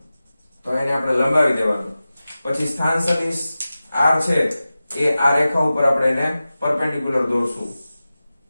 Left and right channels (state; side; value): inverted; both; correlation -0.95